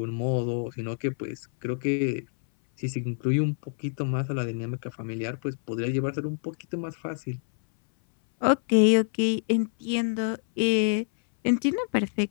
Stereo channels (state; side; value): silent; right; 59 dB below the other